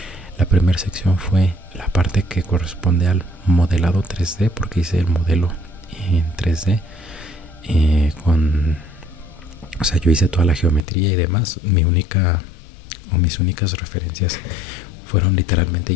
La primera sección fue la parte que corresponde al modelado 3D, porque hice el modelo en 3D o sea, yo hice toda la geometría y demás. Mis únicas referencias fueron literalmente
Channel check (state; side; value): drops out; right; at 10.8 s